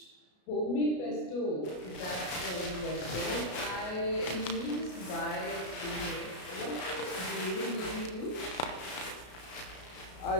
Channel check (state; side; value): late; right; 33 ms